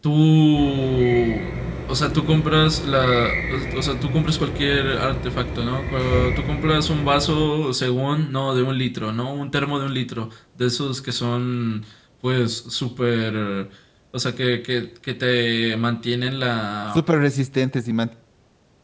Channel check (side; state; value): both; identical; correlation 1.00